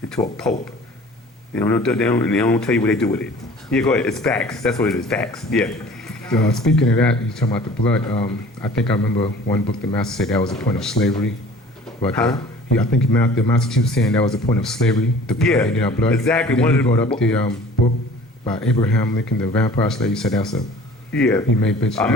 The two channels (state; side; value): normal; both; correlation 0.47